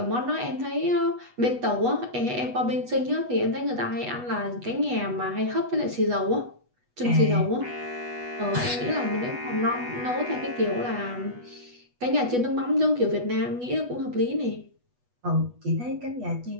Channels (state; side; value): late; left; 8.2 ms